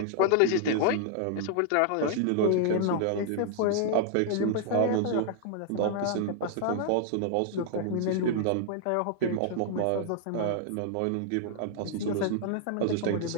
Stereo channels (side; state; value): both; different; correlation 0.00